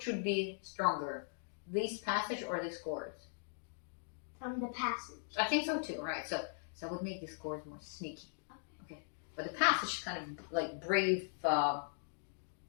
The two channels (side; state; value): right; silent; digital silence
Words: should be stronger, this passage or these chords? The passage. I think so too, right? So I would make these chords more sneaky. Okay. But the passage is kind of like brave,